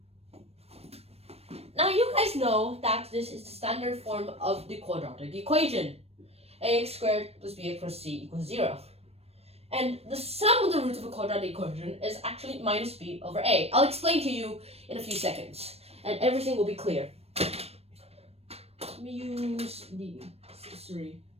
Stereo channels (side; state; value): left; late; 0.29 ms